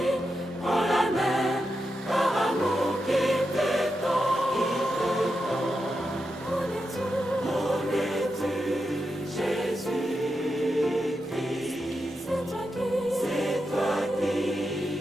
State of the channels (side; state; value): both; normal; correlation 0.87